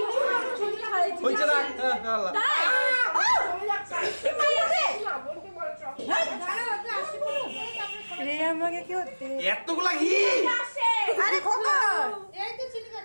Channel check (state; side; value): inverted; both; correlation -1.00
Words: ছবি খাইছি হইছে না আল্লাহ তাই চলে যাচ্ছে বোনকে বলে চল রে আমাকে কি হচ্ছে এতগুলা ঘি আরে খোকা